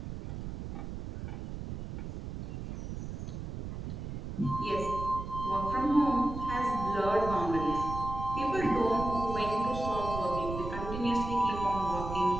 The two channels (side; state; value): right; noise; rumble, 7 dB below the sound